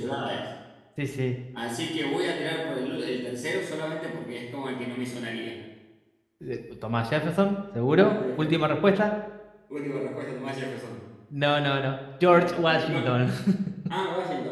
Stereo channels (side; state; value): both; identical; correlation 1.00